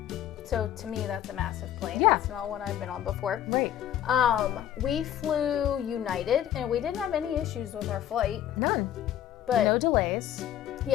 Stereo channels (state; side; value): quieter; right; 11.1 dB